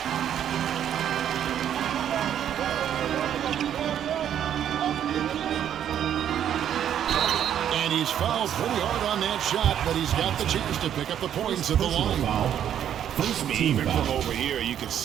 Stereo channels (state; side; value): quieter; left; 9.9 dB